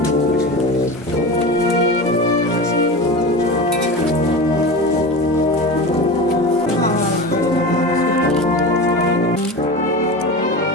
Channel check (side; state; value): both; normal; correlation 0.28